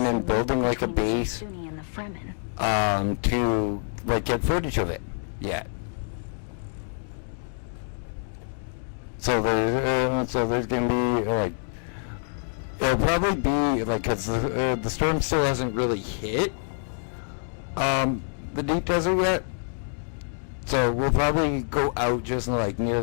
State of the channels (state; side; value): silent; right; 61 dB below the other